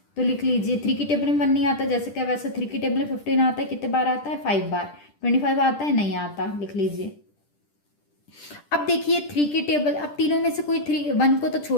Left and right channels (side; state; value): right; late; 10 ms